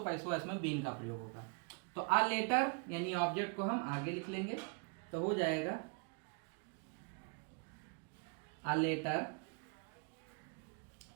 पैसिव वॉइस में बीन का प्रयोग होगा। तो अ लेटर यानी ऑब्जेक्ट को हम आगे लिख लेंगे, तो हो जाएगा अ लेटर,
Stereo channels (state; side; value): quieter; left; 37.3 dB